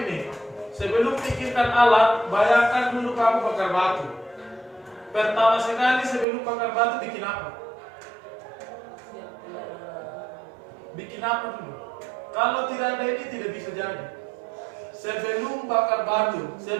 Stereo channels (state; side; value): drops out; left; at 6.2 s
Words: Sebelum pikirkan alat, bayangkan dulu kamu bakar batu. Pertama sekali sebelum bakar batu bikin apa? Bikin apa dulu? Kalau tidak ada ini tidak bisa jadi. Sebelum bakar batu,